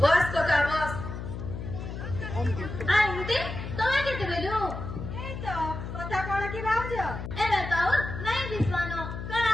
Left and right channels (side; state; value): left; noise; hum, 7 dB below the sound